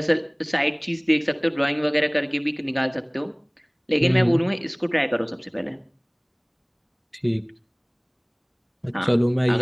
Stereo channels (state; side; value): identical; both; correlation 1.00